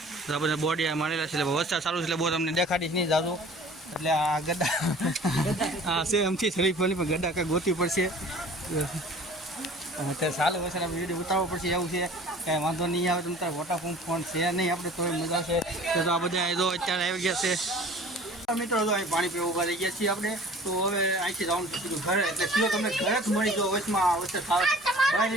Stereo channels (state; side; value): normal; both; correlation 0.47